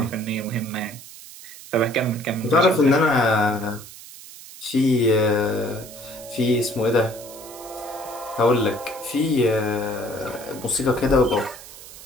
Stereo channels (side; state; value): right; noise; hiss, 16 dB below the sound